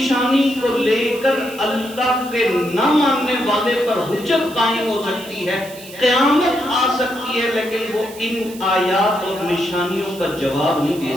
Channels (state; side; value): noise; right; hiss, 17 dB below the sound